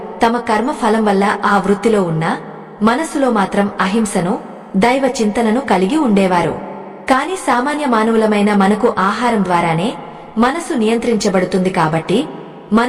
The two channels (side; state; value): both; identical; correlation 1.00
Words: తమ కర్మ ఫలం వల్ల ఆ వృత్తిలో ఉన్న మనసులో మాత్రం అహింసను, దైవ చింతనను కలిగి ఉండేవారు. కాని సామాన్య మానవులమైన మనకు ఆహారం ద్వారానే మనసు నియంత్రించబడుతుంది కాబట్టి